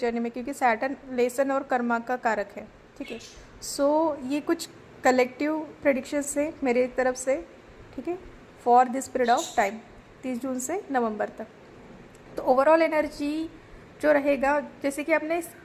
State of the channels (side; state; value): both; identical; correlation 1.00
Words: में, क्योंकि सैटर्न लेसन और कर्मा का कारक है। ठीक है, सो ये कुछ कलेक्टिव प्रेडिक्शंस है मेरे तरफ से, ठीक है, for this period of time 30 जून से नवंबर तक। तो ओवरऑल एनर्जी जो रहेगा, जैसे कि आपने